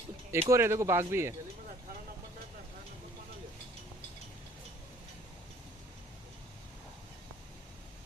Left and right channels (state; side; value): normal; both; correlation 0.56